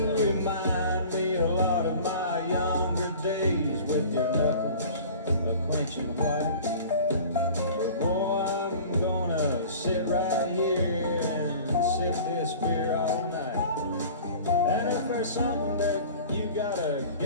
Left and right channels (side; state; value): both; inverted; correlation -0.42